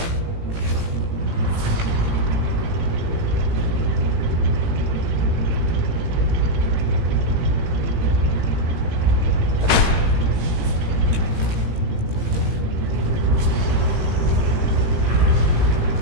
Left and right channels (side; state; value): left; late; 18 ms